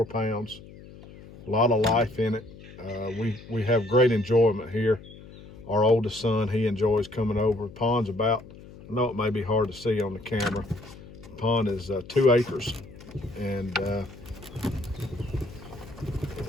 pounds. A lot of life in it. We have great enjoyment here. Our oldest son, he enjoys coming over. The pond's about, I know it may be hard to see on the camera, the pond is 2 acres, and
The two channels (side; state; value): left; noise; hum, 18 dB below the sound